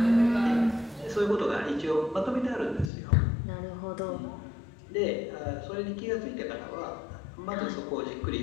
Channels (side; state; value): right; drops out; at 2.9 s